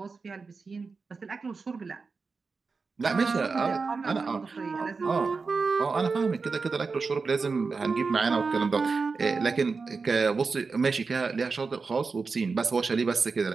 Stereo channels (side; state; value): left; quieter; 4.5 dB